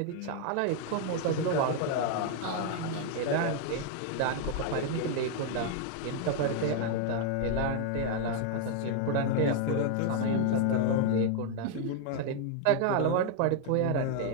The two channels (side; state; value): both; different; correlation 0.00